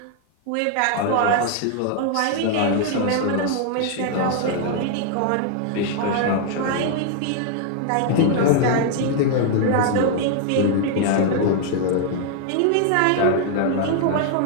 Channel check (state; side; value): different; both; correlation 0.00